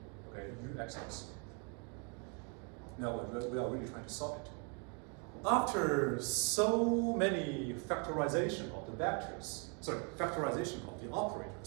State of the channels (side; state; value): left; quieter; 36.6 dB